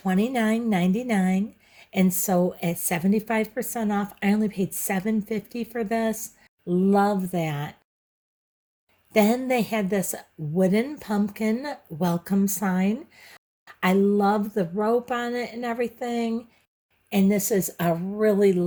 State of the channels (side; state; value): both; identical; correlation 1.00